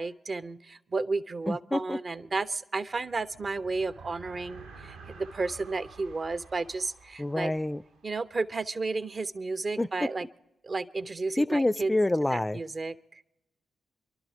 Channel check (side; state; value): both; normal; correlation 0.95